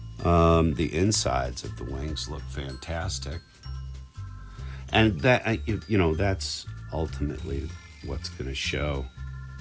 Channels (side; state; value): both; identical; correlation 1.00